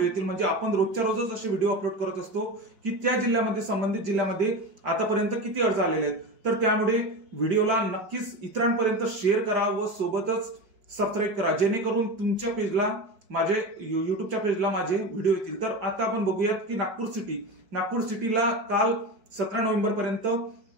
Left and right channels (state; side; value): late; left; 4.5 ms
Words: येतील म्हणजे आपण रोजच्या रोजच असे व्हिडिओ अपलोड करत असतो की त्या जिल्ह्यामध्ये संबंधित जिल्ह्यामध्ये आतापर्यंत किती अर्ज आलेले आहेत। तर त्यामुळे व्हिडिओला नक्कीच इतरांपर्यंत शेअर करा व सोबतच सबस्क्राईब करा, जेणेकरून तुमच्या पेजला माझे युट्यूबच्या पेजला माझे व्हिडिओ येतील। तर आता आपण बघूयात की नागपूर सिटीला काल 17 नोव्हेंबर पर्यंत